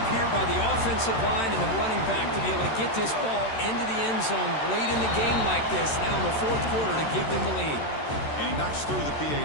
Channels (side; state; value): right; late; 13 ms